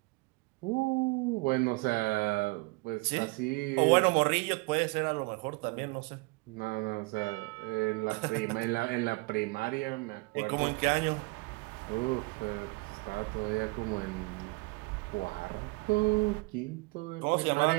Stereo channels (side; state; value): left; quieter; 26.5 dB